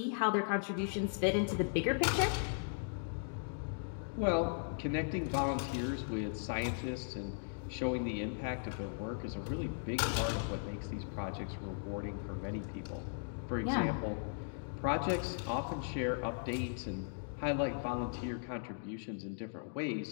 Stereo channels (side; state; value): right; silent; digital silence